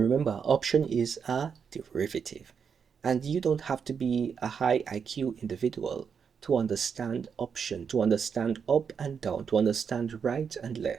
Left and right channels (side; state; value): left; quieter; 6.6 dB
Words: option is a derivative. And you don't have to be a high IQ individual to understand option, to understand up and down, to understand right and